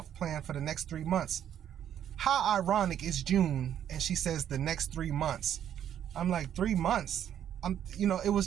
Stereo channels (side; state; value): left; quieter; 10.0 dB